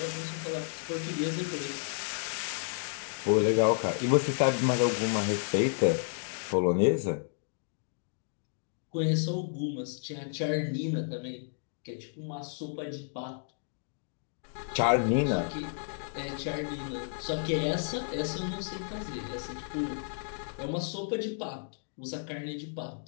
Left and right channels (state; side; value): silent; right; digital silence